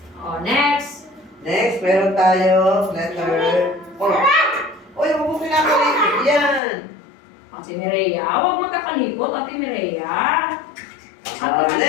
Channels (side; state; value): right; drops out; at 6.6 s